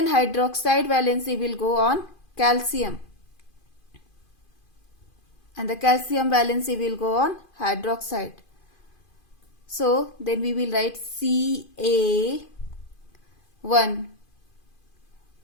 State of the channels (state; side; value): late; right; 2.5 ms